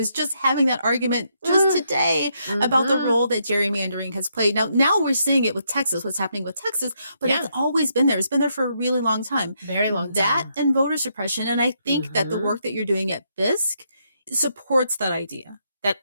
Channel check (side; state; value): both; inverted; correlation -0.77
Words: just having that argument just today about the role that gerrymandering has played. Now we're seeing it with Texas, what's happening with Texas, but it's always been there. It's been there for a really long time. Very long That time. and voter suppression. And I think that the work that you're doing at BISC supports that idea.